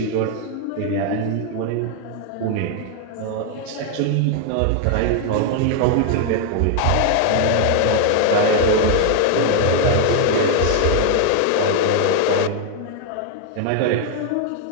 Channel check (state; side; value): different; both; correlation 0.01